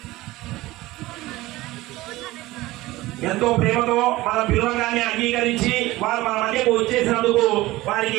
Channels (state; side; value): quieter; left; 18.6 dB